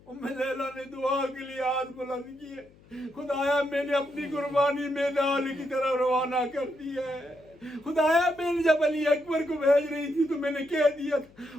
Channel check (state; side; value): noise; left; hum, 26 dB below the sound